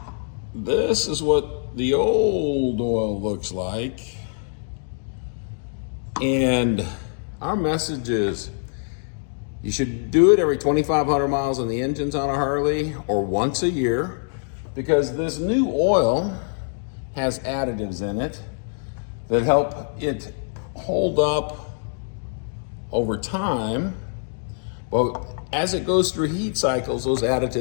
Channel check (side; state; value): right; silent; digital silence